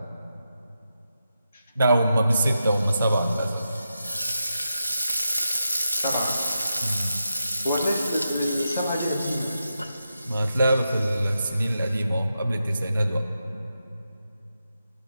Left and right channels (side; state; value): both; inverted; correlation -0.87